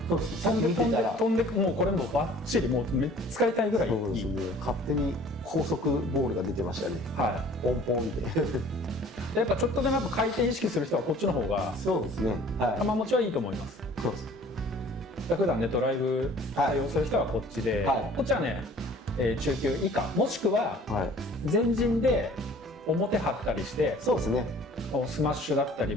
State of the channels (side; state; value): both; normal; correlation 0.51